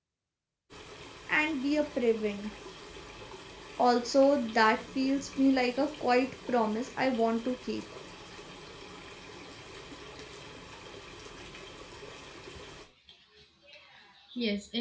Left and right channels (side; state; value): both; identical; correlation 1.00